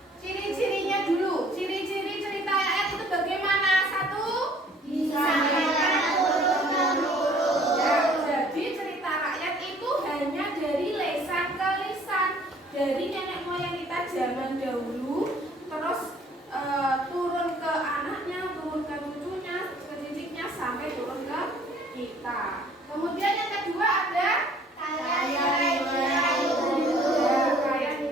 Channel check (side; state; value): both; normal; correlation 0.56